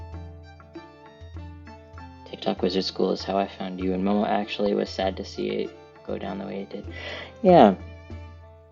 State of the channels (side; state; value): both; identical; correlation 1.00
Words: TikTok Wizard School is how I found you, and Momo actually was sad to see it go down the way it did. Yeah.